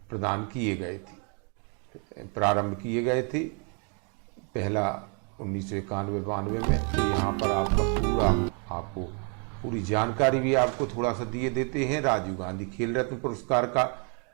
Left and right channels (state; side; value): quieter; left; 38.0 dB